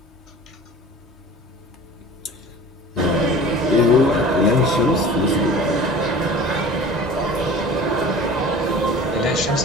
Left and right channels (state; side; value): normal; both; correlation 0.41